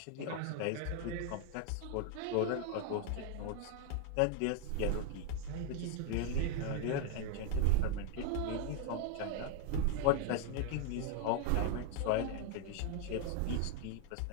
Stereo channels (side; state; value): both; different; correlation 0.00